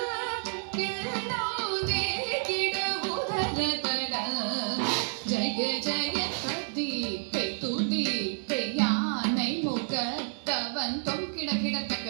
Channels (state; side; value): silent; left; digital silence